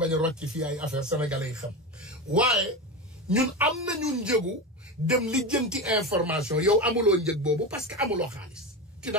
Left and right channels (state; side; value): normal; both; correlation 0.21